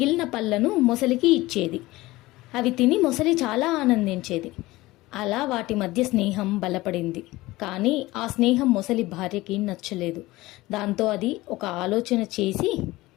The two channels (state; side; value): quieter; right; 19.2 dB